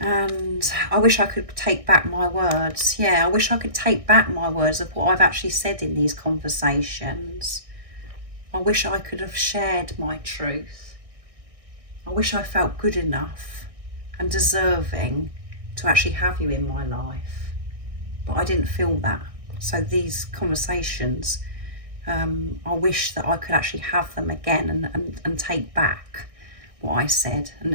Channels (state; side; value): late; left; 1.6 ms